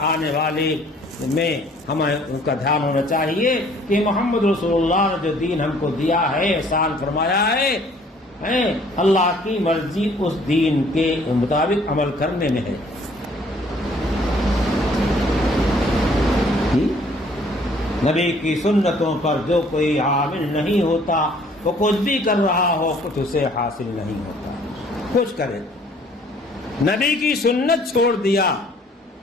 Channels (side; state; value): both; normal; correlation 0.58